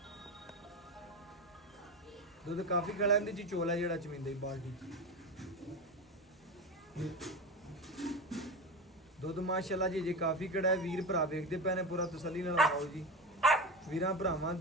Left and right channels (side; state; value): both; normal; correlation 0.22